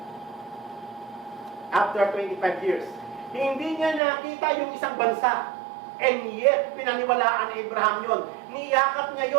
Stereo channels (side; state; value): left; drops out; at 4.0 s